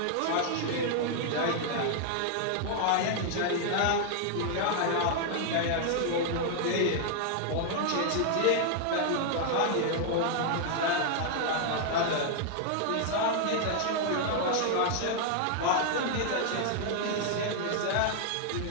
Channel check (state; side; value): different; both; correlation 0.00